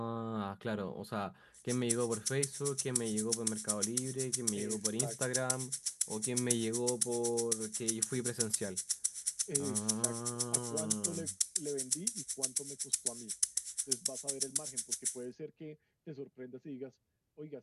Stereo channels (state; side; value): identical; both; correlation 1.00